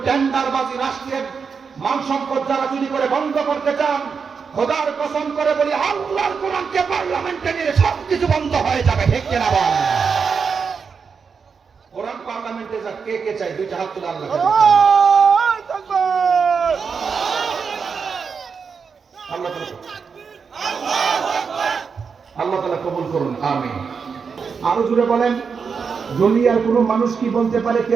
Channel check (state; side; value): quieter; left; 5.8 dB